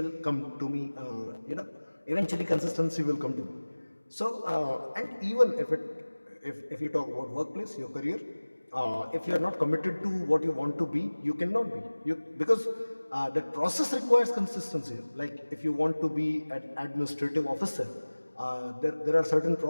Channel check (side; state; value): both; inverted; correlation -1.00